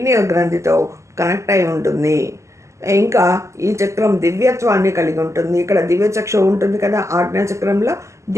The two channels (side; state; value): left; late; 0.14 ms